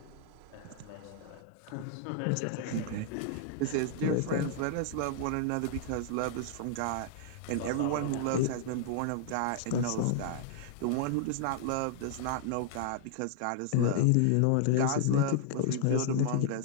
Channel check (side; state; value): both; different; correlation -0.01